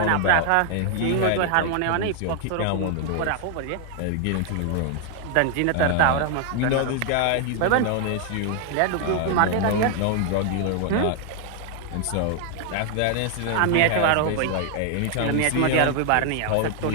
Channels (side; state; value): both; different; correlation 0.00